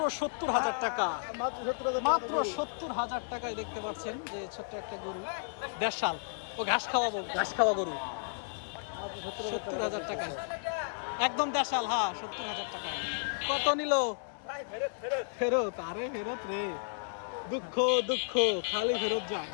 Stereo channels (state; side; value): silent; right; 56 dB below the other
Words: 70,000 টাকা, মাত্র 70,000 টাকায় দেখতে পাচ্ছেন যে ছোট্ট একটা গরু, দেশাল ও ঘাস খাওয়া গরু 70,000 টাকায়, একদম দেশাল। হ্যাঁ 70,000 টাকায়। কত নিল? ফেরত? আরে ফেরত রে, দুঃখ খালি ফেরত যায়।